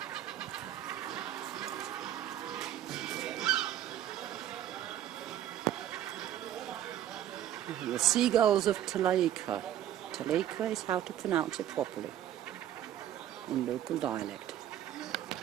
The Seagulls of Talacre. Talacre is how to pronounce it properly in local dialect.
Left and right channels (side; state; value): left; quieter; 11.7 dB